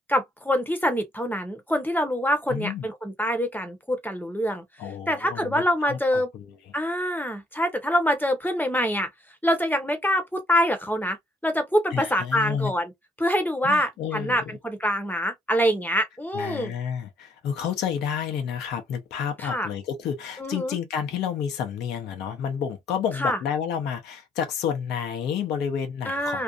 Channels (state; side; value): normal; both; correlation 0.69